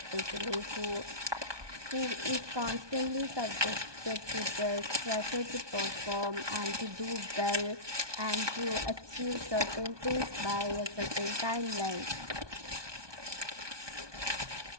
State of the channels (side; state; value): left; late; 1.2 ms